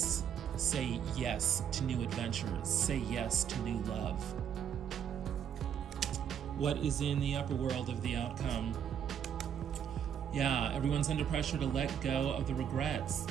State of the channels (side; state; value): left; quieter; 8.6 dB